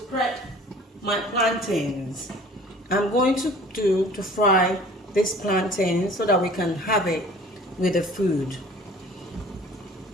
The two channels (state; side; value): normal; both; correlation 0.48